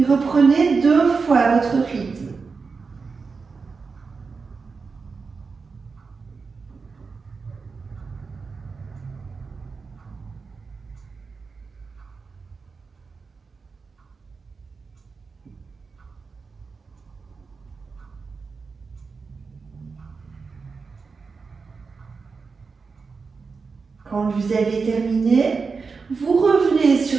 reprenez 2 fois votre rythme. Quand vous avez terminé, vous revenez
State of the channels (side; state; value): left; quieter; 4.8 dB